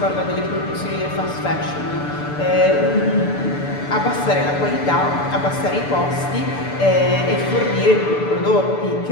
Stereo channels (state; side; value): late; right; 6.8 ms